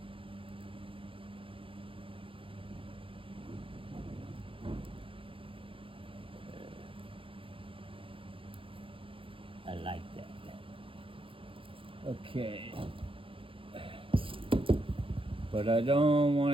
like that. Okay. But I don't want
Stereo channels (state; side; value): late; left; 0.26 ms